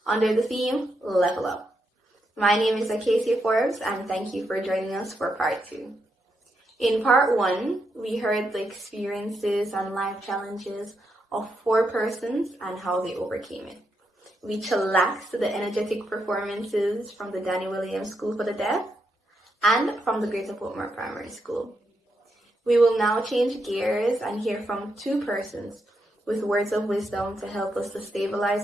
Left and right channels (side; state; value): both; normal; correlation 0.81